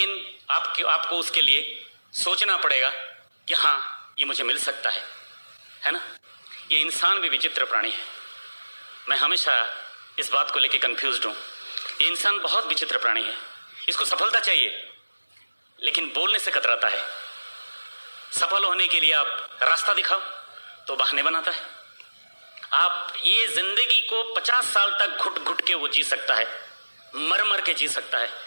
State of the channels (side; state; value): both; inverted; correlation -1.00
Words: आपको उसके लिए सोचना पड़ेगा कि हाँ ये मुझे मिल सकता है ना। ये इंसान भी विचित्र प्राणी है। मैं हमेशा इस बात को लेकर कंफ्यूज्ड हूं। ये इंसान बहुत विचित्र प्राणी है। इसको सफलता चाहिए लेकिन बोलने से कतराता है। सफल होने के लिए आप रास्ता दिखाओ तो बहाने बनाता है। आप ये जिंदगी को 50 साल तक घुट घुट के वो जी सकता है, मर मर के जी सकता है,